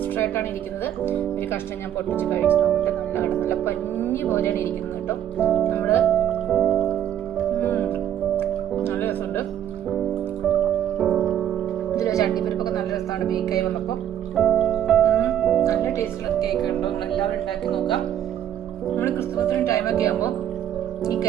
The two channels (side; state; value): left; quieter; 10.6 dB